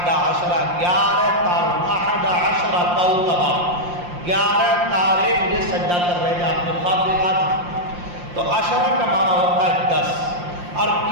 عشرہ 11 تارے، احد عشرہ کوكبا 11 تارے مجھے سجدہ کر رہے تھے، آپ نے خواب دیکھا تھا۔ تو عشرہ کا معنی ہوتا ہے 10۔ اور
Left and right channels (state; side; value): late; left; 5.7 ms